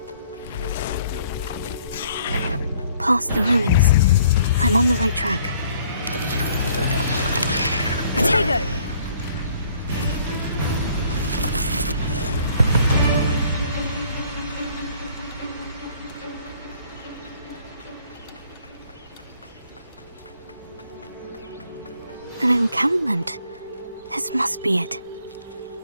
Past the ruins. I'm on the right track. Potato! An encampment. This must be it.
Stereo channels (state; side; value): inverted; both; correlation -0.60